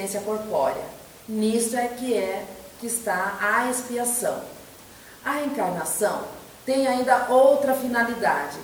corpórea. Nisto é que está a expiação. A reencarnação tem ainda outra finalidade,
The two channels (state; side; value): identical; both; correlation 1.00